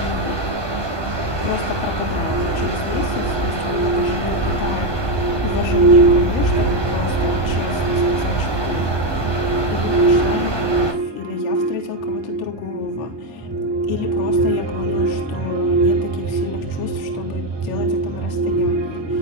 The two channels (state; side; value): late; left; 1.2 ms